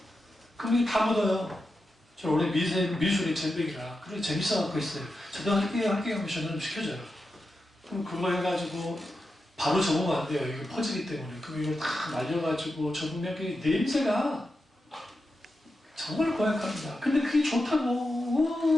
그게 다 묻어요. 저 원래 미술이 전백이라 그래 재밌어갖고 있어요. 저도 할게요 하면 전화 좀 시켜줘요. 그럼 그거 해가지고 바로 적으면 안 돼요. 이게 퍼지기 때문에. 그럼 이걸 다 날려가지고 적으면 그 냄새가 정말 고약합니다. 근데 그게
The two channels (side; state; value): both; normal; correlation 0.89